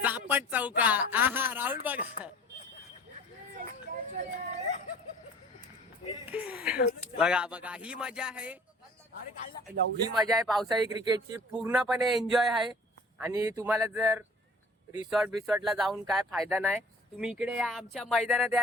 चापट चौका. आहा राहुल बघा बघा बघा ही मजा आहे. ही मजा आहे पावसाळी क्रिकेटची. पूर्णपणे एन्जॉय आहे. आणि तुम्हाला जर रिसॉर्टला जाऊन काय फायदा नाही, तुम्ही इकडे या आमच्या मैदानात,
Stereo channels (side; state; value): both; normal; correlation 0.47